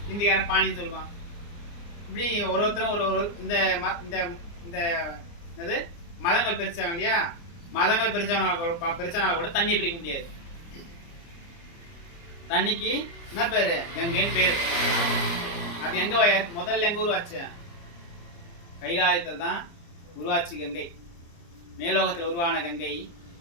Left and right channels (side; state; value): right; late; 29 ms